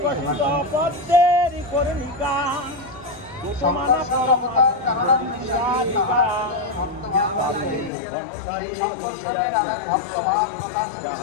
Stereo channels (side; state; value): right; drops out; at 7.9 s